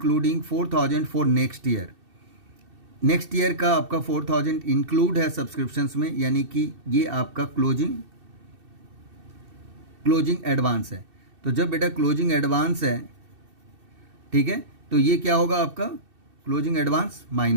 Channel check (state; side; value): late; left; 2.7 ms